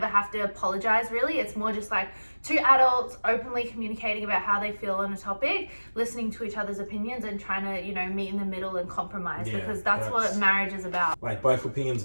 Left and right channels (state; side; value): inverted; both; correlation -1.00